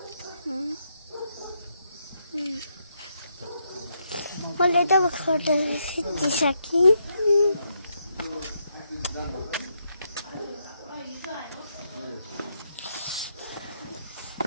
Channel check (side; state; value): both; inverted; correlation -0.78